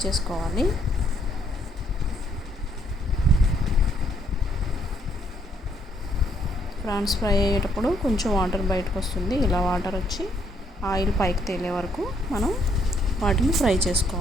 చేసుకోవాలి. ప్రాన్స్ ఫ్రై అయ్యేటప్పుడు కొంచెం వాటర్ బయటకు వస్తుంది. ఇలా వాటర్ వచ్చి ఆయిల్ పైకి తేలే వరకు మనం వాటిని ఫ్రై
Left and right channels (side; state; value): both; normal; correlation 0.70